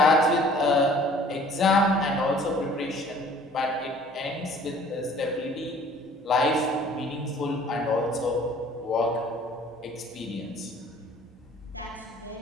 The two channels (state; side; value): normal; both; correlation 0.52